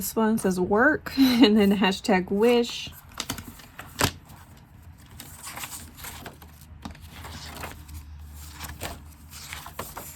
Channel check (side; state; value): both; identical; correlation 1.00